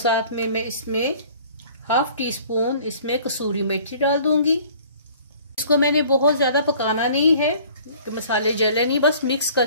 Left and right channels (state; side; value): inverted; both; correlation -0.51